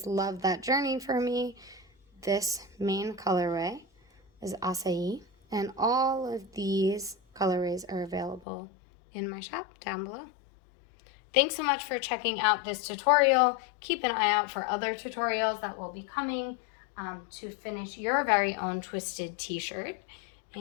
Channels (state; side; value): drops out; right; at 8.4 s